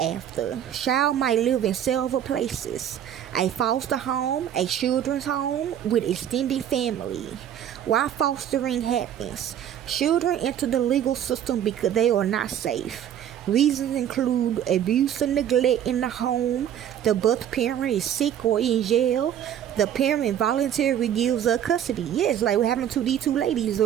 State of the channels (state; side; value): quieter; left; 10.0 dB